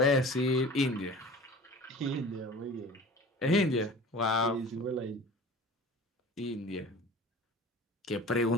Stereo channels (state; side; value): normal; both; correlation 0.41